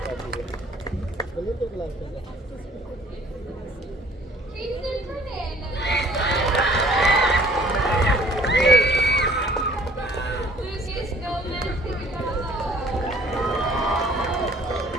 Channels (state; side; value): normal; both; correlation 0.55